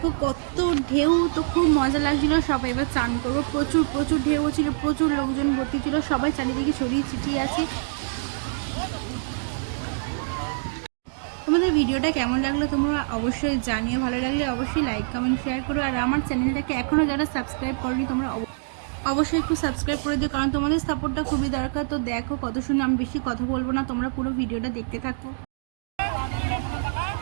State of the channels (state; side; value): silent; left; digital silence